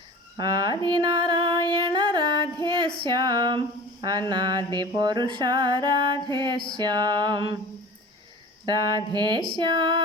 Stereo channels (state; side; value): normal; both; correlation 0.39